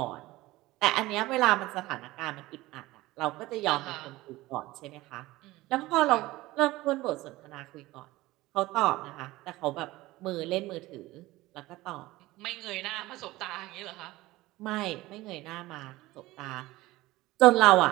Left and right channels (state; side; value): quieter; left; 18.6 dB